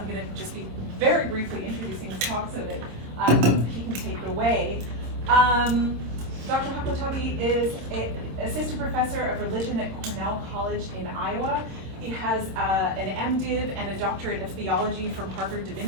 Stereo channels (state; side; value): late; left; 26 ms